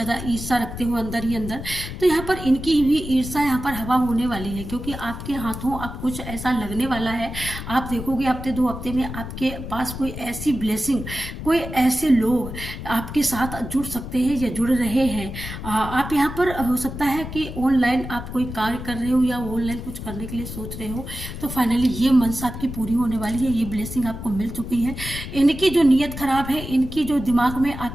ईर्ष्या रखते हो अंदर ही अंदर। तो यहाँ पर इनकी भी ईर्ष्या यहाँ पर हवा होने वाली है, क्योंकि आपके हाथों अब कुछ ऐसा लगने वाला है। आप देखोगे हफ्ते 2 हफ्ते में आपके पास कोई ऐसी ब्लेसिंग, कोई ऐसे लोग आपके साथ जुड़ सकते हैं या जुड़ रहे हैं। आप यहाँ पर हो सकता है कि ऑनलाइन आप कोई कार्य कर रहे हो या ऑनलाइन कुछ करने के लिए सोच रहे हो, तो फाइनली ये मनसा आपकी पूरी होने वाली है। ये ब्लेसिंग आपको मिल चुकी है। इनकी जो नीयत खराब है, इनकी जो दिमाग में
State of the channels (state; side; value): noise; left; rumble, 9 dB below the sound